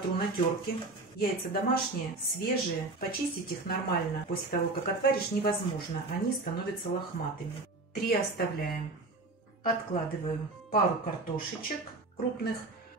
на терке. Яйца домашние, свежие. Почистить их нормально после того, как отваришь, невозможно. Они становятся лохматыми. 3 оставляем. Откладываю пару картошечек крупных.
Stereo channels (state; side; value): quieter; left; 3.2 dB